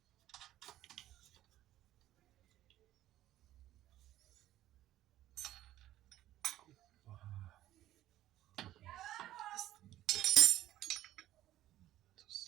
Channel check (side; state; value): left; quieter; 13.9 dB